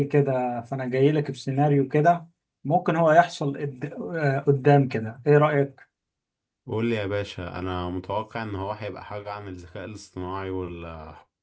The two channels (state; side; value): identical; both; correlation 1.00